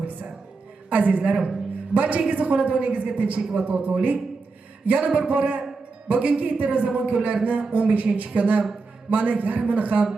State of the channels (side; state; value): left; quieter; 4.1 dB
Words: Azizlarim, barchangizning xonadoningizga tinchlik va totuvlik. Yana bir bora bugungi Ittiroz zamon kunlarini 15-kuni mana yarmini ham